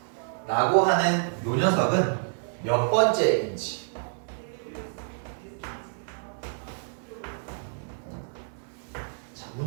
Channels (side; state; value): left; silent; digital silence